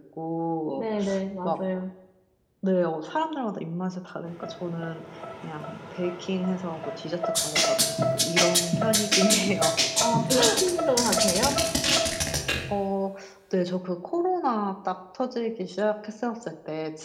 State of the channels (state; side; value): identical; both; correlation 1.00